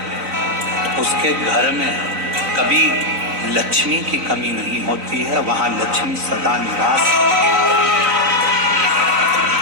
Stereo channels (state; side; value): late; left; 3.9 ms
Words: उसके घर में कभी लक्ष्मी की कमी नहीं होती है, वहां लक्ष्मी सदा निवास,